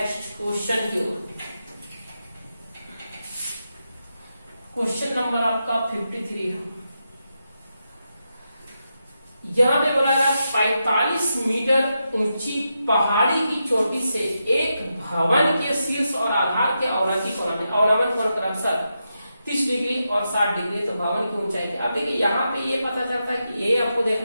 क्वेश्चन की ओर। क्वेश्चन नंबर आपका 53 है। यहाँ पे बोला गया 45 मीटर ऊंची पहाड़ी की चोटी से एक भवन के शीर्ष और आधार के अवनति कोण में, अवनमन कोण क्रमशः 30 डिग्री और 60 डिग्री, तो भवन की ऊंचाई क्या। अब देखिए यहाँ पे ये पता चलता है कि ये आपको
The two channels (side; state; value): both; inverted; correlation -0.86